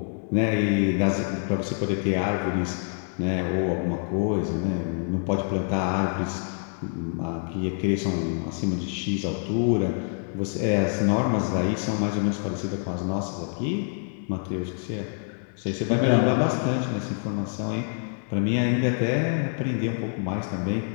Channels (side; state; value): right; silent; 61 dB below the other